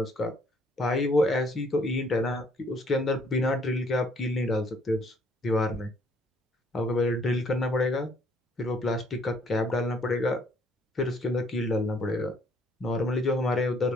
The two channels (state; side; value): normal; both; correlation 0.64